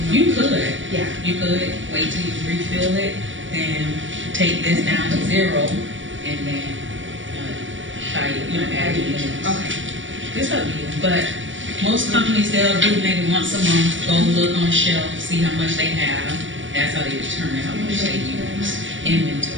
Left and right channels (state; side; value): late; left; 0.56 ms